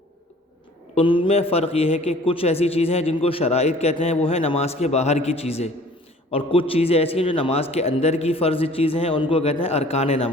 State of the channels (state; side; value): normal; both; correlation 0.51